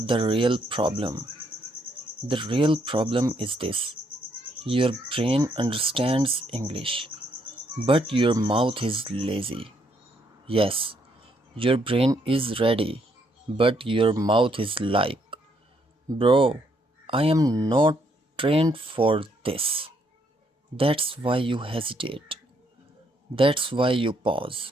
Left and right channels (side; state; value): both; normal; correlation 0.72